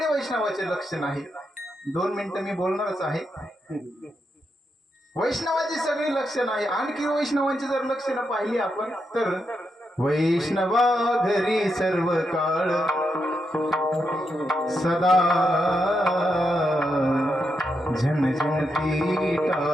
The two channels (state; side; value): normal; both; correlation 0.83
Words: वैष्णवाचे लक्षण आहे. 2 मिनिटं मी बोलणारच आहे. वैष्णवाची सगळी लक्षण आहे. आणखी वैष्णवांची जर लक्षणं पाहिली आपण तर वैष्णवा घरी सर्व काळ सदा झणझणती